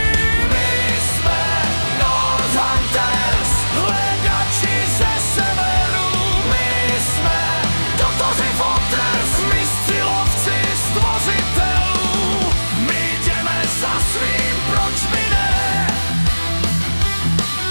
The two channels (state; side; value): inverted; both; correlation -1.00